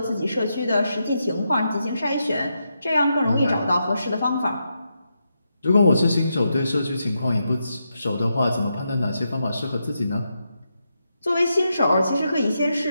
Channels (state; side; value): inverted; both; correlation -0.84